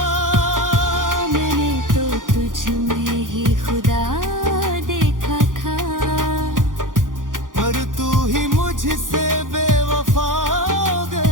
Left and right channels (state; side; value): late; left; 0.89 ms